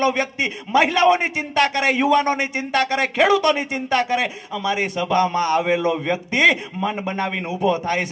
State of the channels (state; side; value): identical; both; correlation 1.00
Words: વ્યક્તિ મહિલાઓની ચિંતા કરે, યુવાનોની ચિંતા કરે, ખેડૂતોની ચિંતા કરે। અમારી સભામાં આવેલો વ્યક્તિ મન બનાવીને ઊભો થાય